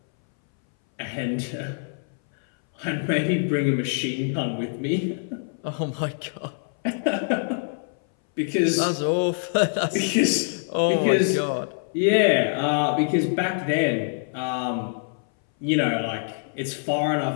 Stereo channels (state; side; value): silent; right; 60 dB below the other